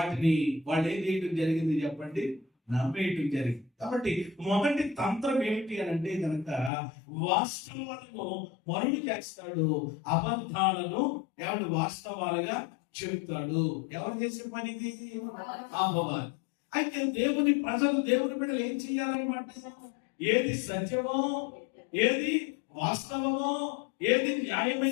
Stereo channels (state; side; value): drops out; right; at 6.7 s